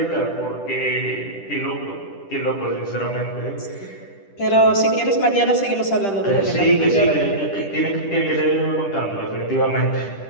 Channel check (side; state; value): right; late; 10 ms